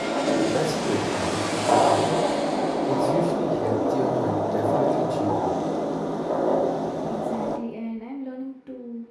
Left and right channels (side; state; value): both; identical; correlation 1.00